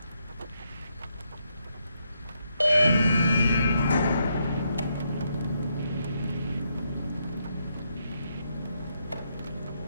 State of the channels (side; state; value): both; inverted; correlation -0.79